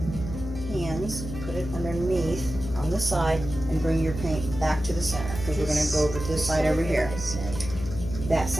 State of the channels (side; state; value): left; noise; hum, 8 dB below the sound